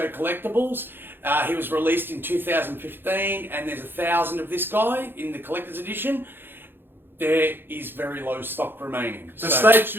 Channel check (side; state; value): left; late; 0.10 ms